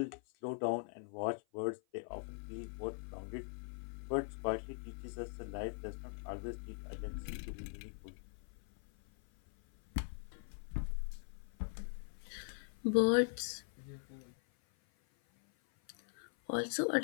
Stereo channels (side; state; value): right; silent; 50 dB below the other